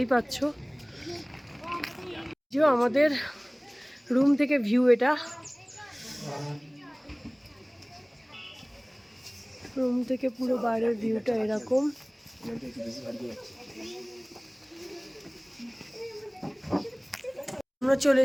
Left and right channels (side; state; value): both; identical; correlation 1.00